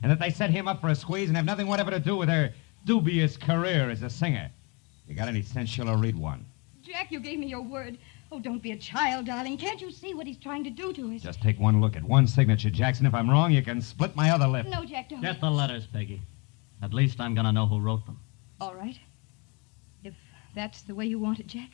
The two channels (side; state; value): right; quieter; 30.7 dB